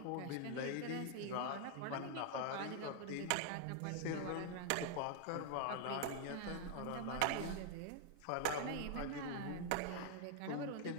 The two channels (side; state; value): both; different; correlation 0.00